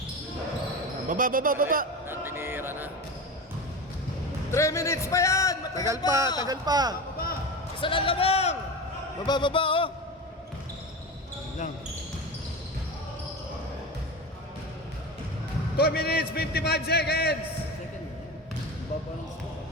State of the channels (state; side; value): normal; both; correlation 0.25